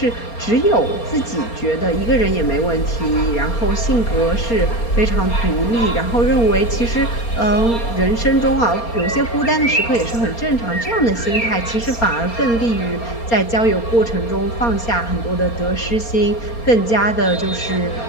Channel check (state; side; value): late; right; 4.3 ms